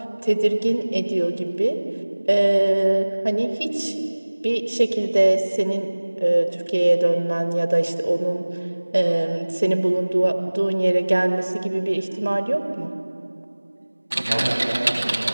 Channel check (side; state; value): both; inverted; correlation -1.00